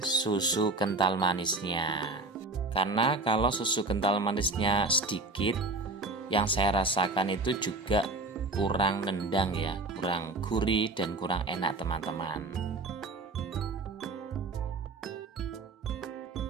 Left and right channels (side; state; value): left; quieter; 3.2 dB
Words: kental manisnya. Karena kalau susu kental manisnya sedikit, yang saya rasakan itu juga kurang nendang ya, kurang gurih dan kurang enak teman-teman.